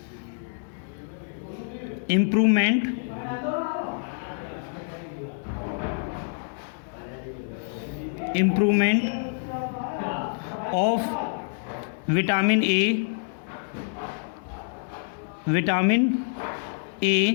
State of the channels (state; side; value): silent; right; digital silence